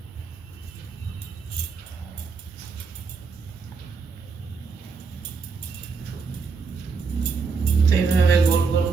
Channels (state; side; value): quieter; left; 5.0 dB